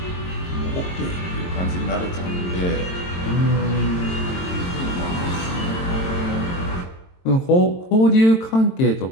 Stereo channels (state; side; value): late; right; 22 ms